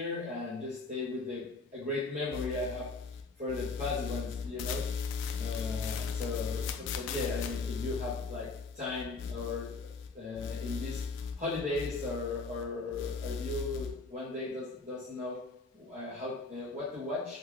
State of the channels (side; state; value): right; quieter; 3.8 dB